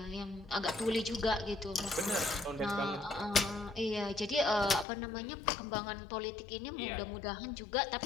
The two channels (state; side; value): drops out; right; at 4.9 s